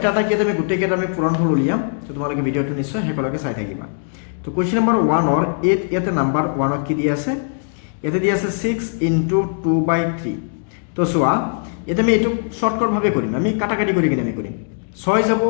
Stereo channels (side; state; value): right; silent; digital silence